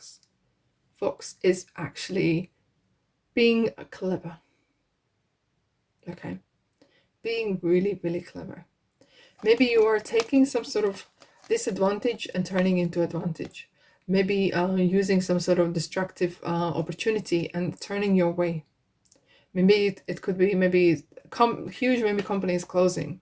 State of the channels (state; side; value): identical; both; correlation 1.00